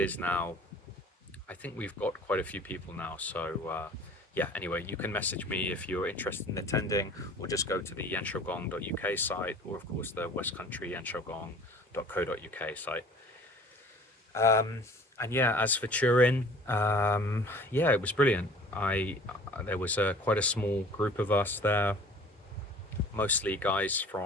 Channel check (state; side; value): normal; both; correlation 0.47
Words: now, I think we've got quite a few people now. So, yeah, anyway, you can message me if you're interested in attending, or just go to the yanshogong.uk site, or of course the West Country yanshogong.co.uk site. And yeah, as for Turin, yeah, it was brilliant. There was quite a small group of us there, mostly guys